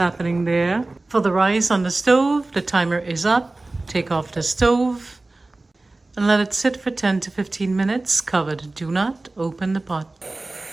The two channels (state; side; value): quieter; left; 3.0 dB